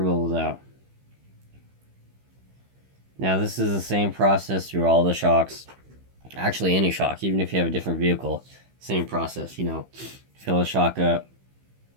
bubbles out. Now this is the same process through all the shocks. Actually, any shock, even if you have a different vehicle, same process, you know. Fill the shock up.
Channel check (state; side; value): late; left; 15 ms